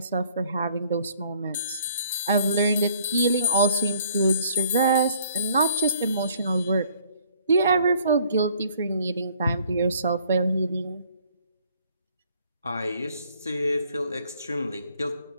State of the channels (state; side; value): inverted; both; correlation -0.61